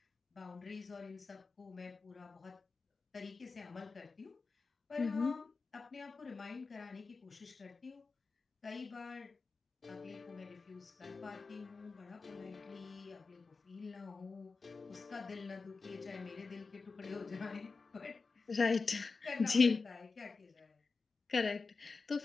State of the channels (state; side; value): quieter; right; 4.3 dB